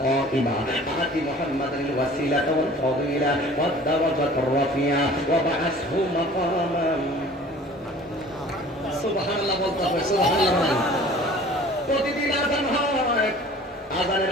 কাইমা আতি মুহাম্মাদাল ওয়াসিলাতা ওয়াল ফাদিলা ওয়াদ দাওয়াতার রাফিয়া ওয়া বা'আসহু মাকামান। সুবহানাল্লাহ বলতে হবে, সুবহানাল্লাহ। প্রতিদিন আযান হয়,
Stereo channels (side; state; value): both; normal; correlation 0.47